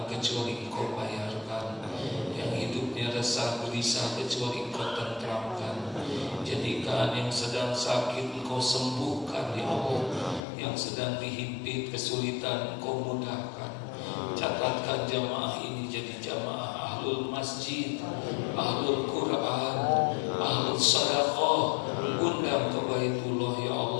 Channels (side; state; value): right; drops out; at 10.4 s